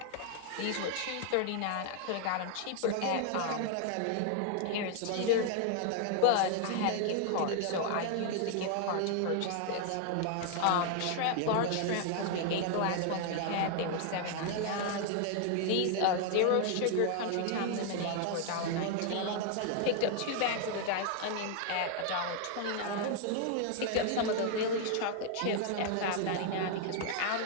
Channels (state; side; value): different; both; correlation 0.00